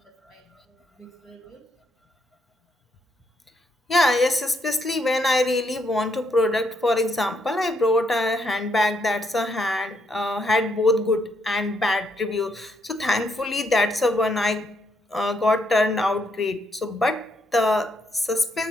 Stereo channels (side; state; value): both; normal; correlation 0.75